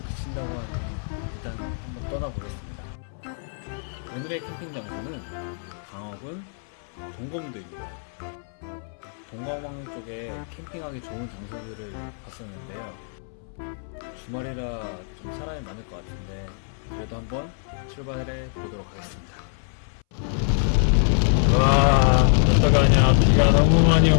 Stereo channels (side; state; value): right; silent; 62 dB below the other